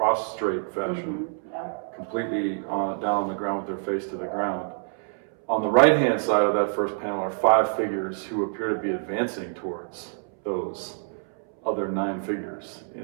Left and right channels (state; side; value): silent; left; 61 dB below the other